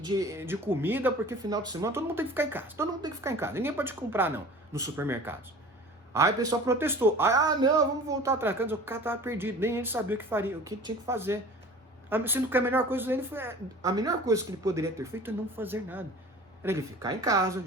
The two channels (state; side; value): normal; both; correlation 0.42